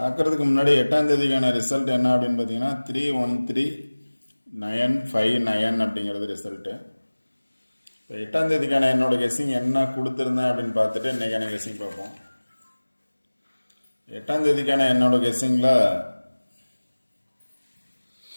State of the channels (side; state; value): both; inverted; correlation -1.00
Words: ஆக்கிறதுக்கு முன்னாடி 8ஆம் தேதிக்கான ரிசல்ட் என்ன அப்படின்னு பார்த்தீங்கன்னா 313959 அப்படிங்கிறது ரிசல்ட்டு. இப்போ 8ஆம் தேதிக்கான என்னோட கெஸிங் என்ன கொடுத்துருந்தேன் அப்படின்னு பார்த்துட்டு இன்றைக்கான கெஸிங் பார்ப்போம். 8ஆம் தேதிக்கான என்னோட கெஸ்ஸிங்கில்